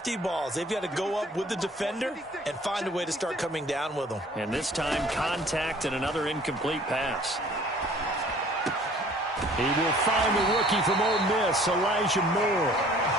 balls. They've got to go up with the defender and find a way to start coming down with them. And this time, contact and another incomplete pass. He will find the rookie from Ole Miss, Elijah Moore.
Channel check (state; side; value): normal; both; correlation 0.53